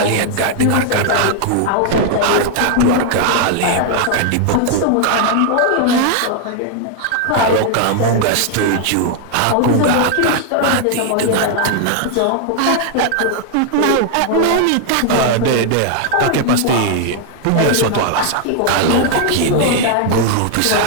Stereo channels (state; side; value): different; both; correlation 0.00